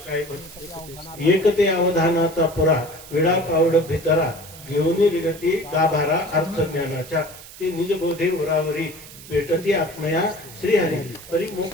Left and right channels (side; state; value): right; noise; hiss, 17 dB below the sound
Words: एक ते अवधानाचा पुरा विडा पावड भितरा घेऊन रिगती गाभारा अर्थ ज्ञानाच्या ते निजबोधे उरावरी भेटती आत्मया श्रीहरी परी